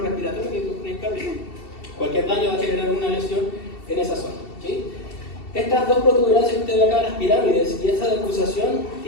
respiratorio que con el cardíaco. Cualquier daño va a generar una lesión en esa zona, ¿sí? Estas dos protuberancias que usted ve acá, las pirámides, y esa decusación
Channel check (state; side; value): late; right; 2.7 ms